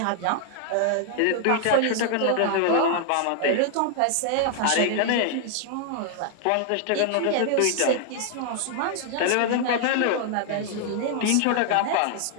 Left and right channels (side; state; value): both; different; correlation 0.00